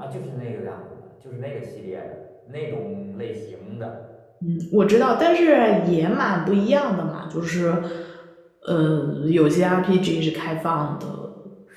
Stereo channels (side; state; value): both; identical; correlation 1.00